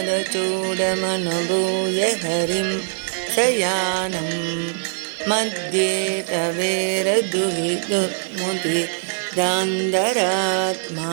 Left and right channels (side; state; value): left; silent; 61 dB below the other